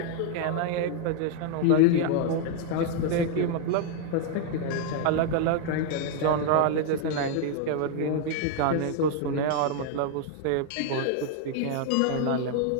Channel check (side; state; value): both; different; correlation 0.00